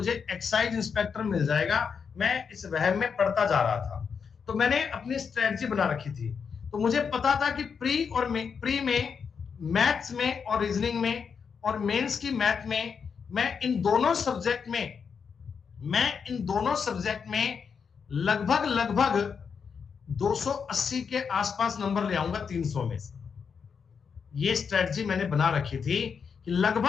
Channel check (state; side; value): quieter; right; 6.3 dB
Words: एक्साइज इंस्पेक्टर मिल जाएगा। मैं इस वहम में पढ़ता जा रहा था, तो मैंने अपनी स्ट्रेटजी बना रखी थी। तो मुझे पता था कि प्री में मैथ्स में और रीजनिंग में और मेंस की मैथ में मैं इन दोनों सब्जेक्ट में लगभग 280 के आसपास नंबर ले आऊंगा 300 में से। ये स्ट्रेटजी मैंने बना रखी थी कि